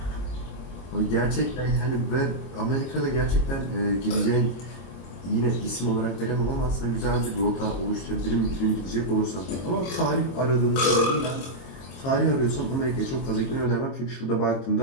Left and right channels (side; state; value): right; late; 22 ms